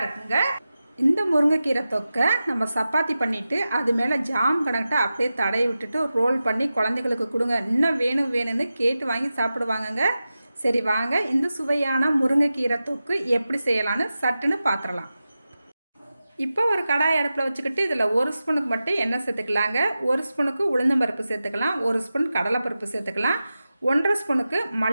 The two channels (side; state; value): both; inverted; correlation -0.93